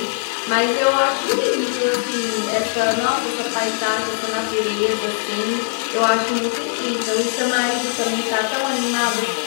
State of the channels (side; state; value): right; silent; digital silence